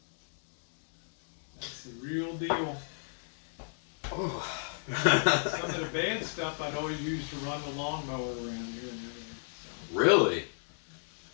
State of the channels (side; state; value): right; silent; 56 dB below the other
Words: That's the real deal. Oh. Some of the bad stuff I'd always use to run the lawnmower around here and everything. So. Really?